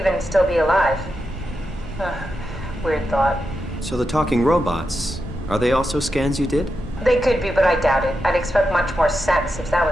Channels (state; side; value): normal; both; correlation 0.88